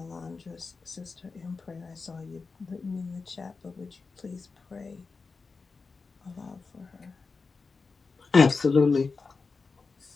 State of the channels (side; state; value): right; quieter; 4.4 dB